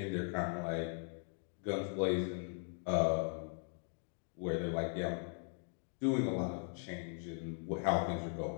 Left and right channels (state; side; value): silent; right; 52 dB below the other